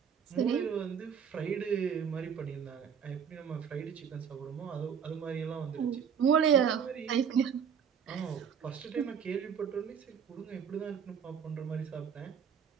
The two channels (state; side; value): quieter; left; 7.4 dB